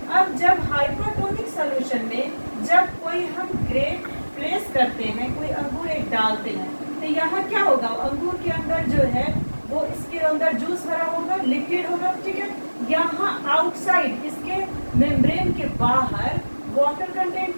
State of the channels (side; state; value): both; inverted; correlation -1.00